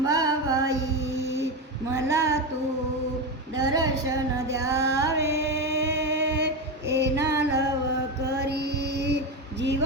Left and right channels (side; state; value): both; normal; correlation 0.16